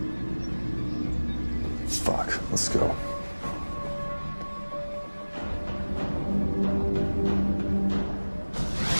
Fuck, let's go.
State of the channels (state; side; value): inverted; both; correlation -1.00